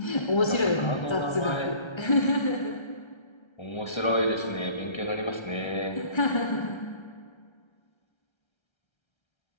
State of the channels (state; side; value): late; right; 1.3 ms